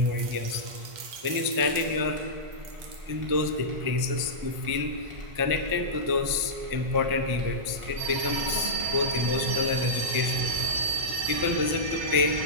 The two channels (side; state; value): left; late; 1.1 ms